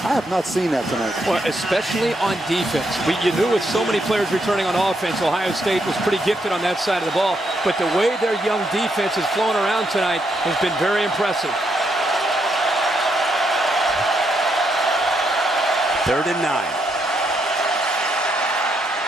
I have not seen that tonight. Well, especially on defense. You knew with so many players returning on offense, Ohio State was pretty gifted on that side of the ball. But the way their young defense is flowing around tonight has been very impressive. 3rd and 9.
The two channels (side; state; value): both; normal; correlation 0.78